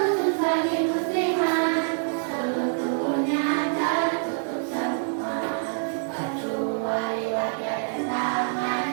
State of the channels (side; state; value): left; silent; 58 dB below the other